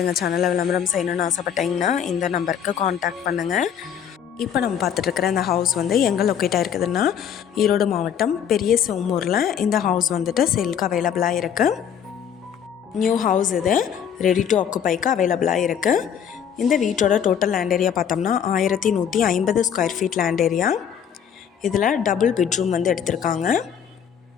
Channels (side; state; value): right; quieter; 8.5 dB